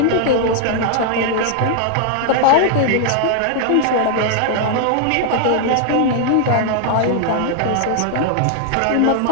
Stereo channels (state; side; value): different; both; correlation 0.00